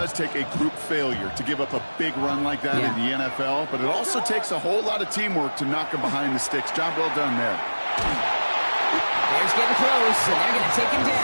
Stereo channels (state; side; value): inverted; both; correlation -1.00